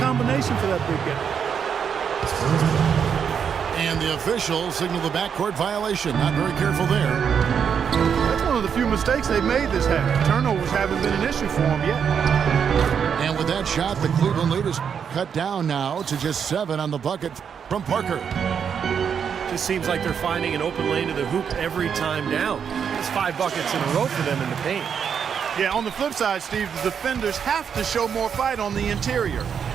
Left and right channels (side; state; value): left; quieter; 7.3 dB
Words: for that big guy. And the officials signal the backcourt violation. Not very careful there. That's one of the few mistakes they've made this half. Turnovers haven't been an issue for them yet. And with that shot, the Cleveland lead is cut down now to just 7 on the bucket from Parker. Just seems like they're finding an open lane to the hoop every time down. It's 5 buckets in a row for them in the paint. Yeah, on the flip side, Steve, the defenders have to show more fight on the interior.